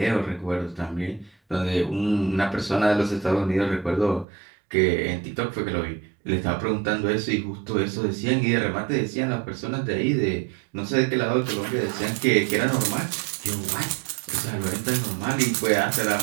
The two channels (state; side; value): drops out; left; at 4.2 s